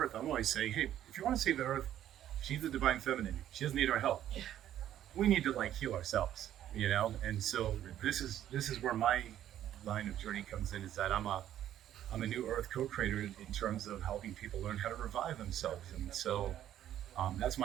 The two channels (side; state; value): left; quieter; 11.5 dB